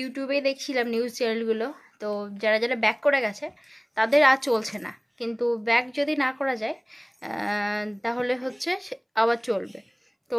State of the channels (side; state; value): both; identical; correlation 1.00